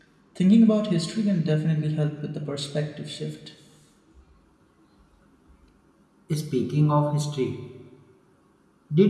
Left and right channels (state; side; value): identical; both; correlation 1.00